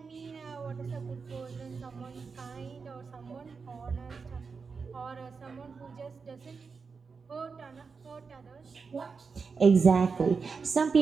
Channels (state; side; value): quieter; left; 5.1 dB